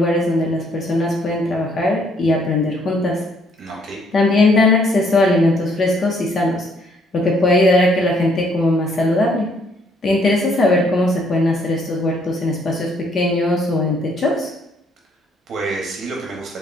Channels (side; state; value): both; normal; correlation 0.67